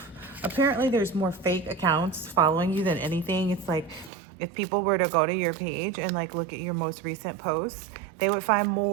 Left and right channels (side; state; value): left; drops out; at 4.1 s